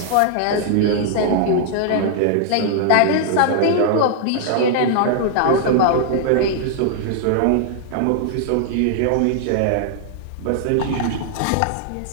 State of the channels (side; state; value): both; different; correlation -0.01